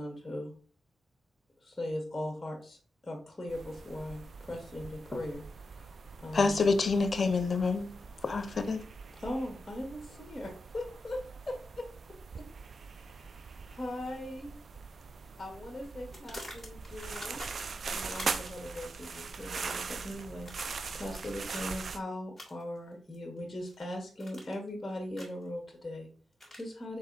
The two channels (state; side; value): normal; both; correlation 0.88